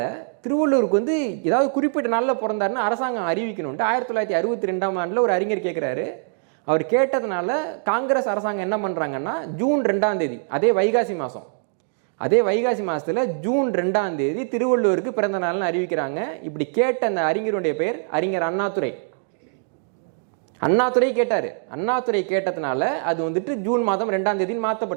திருவள்ளுவருக்கு வந்து ஏதாவது குறிப்பிட்ட நாளில் பிறந்தாருன்னு அரசாங்கம் அறிவிக்கணும்ட்டு 1962ஆம் ஆண்டில் ஒரு அறிஞர் கேட்குறாரு. அவர் கேட்டதுனால காங்கிரஸ் அரசாங்கம் என்ன பண்ணுறாங்கன்னா, ஜூன் 2ஆம் தேதி, அதே வைகாசி மாதம், அதே வைகாசி மாதத்தில் ஜூன் 2ஆம் தேதி திருவள்ளுவருக்கு பிறந்த நாள்னு அறிவிக்கிறாங்க. இப்படி கேட்ட அந்த அறிஞருடைய பெயர் அறிஞர் அண்ணாதுரை. அண்ணாதுரை கேட்டார். அண்ணாதுரை கேட்டதுனால அது வந்துட்டு ஜூன் மாதம் 2ஆம் தேதின்னு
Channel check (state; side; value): silent; left; digital silence